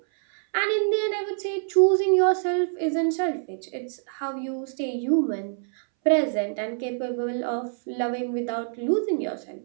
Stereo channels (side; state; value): left; silent; 61 dB below the other